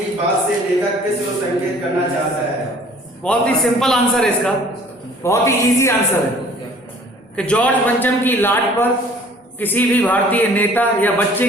बात से लेखक किस ओर संकेत करना चाहता है? बहुत ही सिंपल आंसर है इसका, बहुत ही इजी आंसर है कि जॉर्ज पंचम की लाट पर किसी भी भारतीय नेता या बच्चे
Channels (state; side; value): normal; both; correlation 0.52